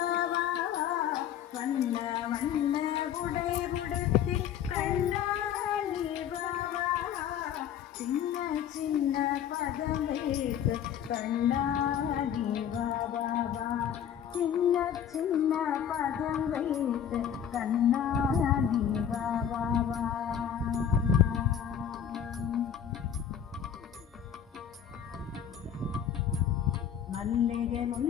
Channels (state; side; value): quieter; right; 9.0 dB